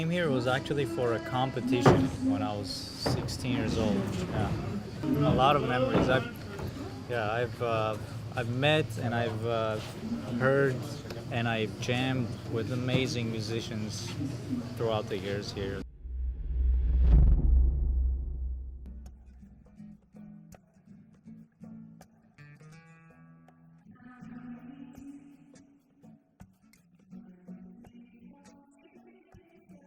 here was actually for a competition when I was 16 years old. Yeah. A lot of memories. I've met and I've heard and I've jammed with amazing musicians throughout the years here. Crazy for feeling so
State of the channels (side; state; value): both; identical; correlation 1.00